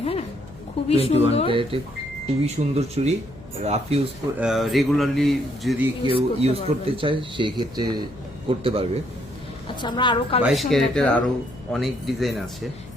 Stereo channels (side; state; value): left; noise; hum, 19 dB below the sound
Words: হ্যাঁ খুবই সুন্দর, খুবই সুন্দর চুড়ি। রাফ ইউজ রেগুলারলি যদি কেউ ইউজ করতে চায় সেই ক্ষেত্রে করতে পারবে। আচ্ছা, আমরা আরো 22 ক্যারেটের আরো অনেক ডিজাইন আছে।